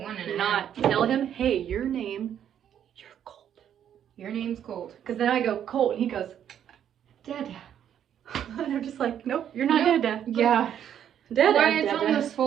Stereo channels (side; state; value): left; quieter; 9.6 dB